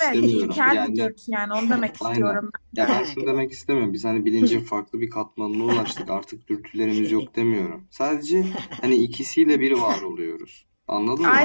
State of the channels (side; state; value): both; inverted; correlation -1.00